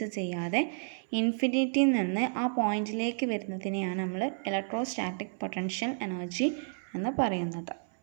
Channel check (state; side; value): silent; left; 57 dB below the other